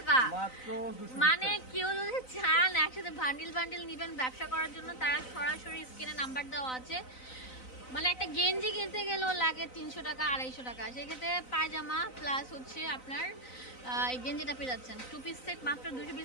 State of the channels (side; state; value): right; late; 4.0 ms